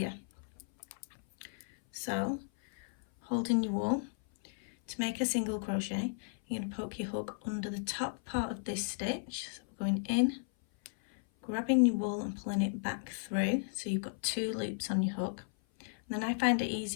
So holding your wool, to make a single crochet, you're going to poke your hook under the top part of this stitch. So we're going in, grabbing your wool and pulling it back through, so you've got 2 loops on your hook. And then I find it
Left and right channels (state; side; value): silent; right; 55 dB below the other